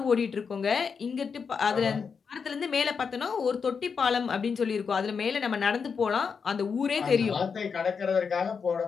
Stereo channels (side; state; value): right; quieter; 5.9 dB